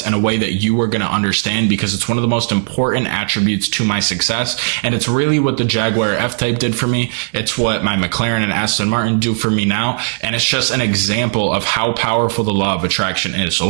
in a way that you are going to understand, because it's one of the most important attributes to my success. And it's really what the Jaguar F-Type did for me. It's what my McLaren and Aston Martin do for me now. And it's just an example of how powerful the law of attraction is. So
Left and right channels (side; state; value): left; silent; 69 dB below the other